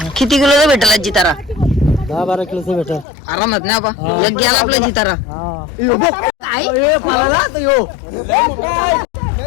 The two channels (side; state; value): right; drops out; at 3.1 s